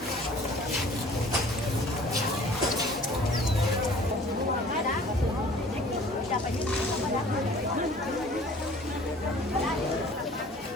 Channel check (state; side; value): normal; both; correlation 0.50